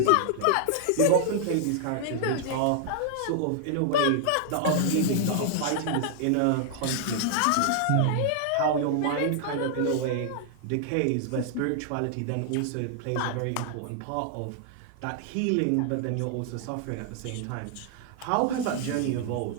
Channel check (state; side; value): different; both; correlation 0.00